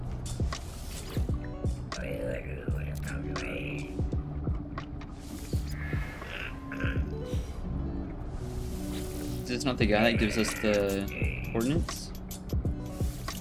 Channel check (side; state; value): both; identical; correlation 1.00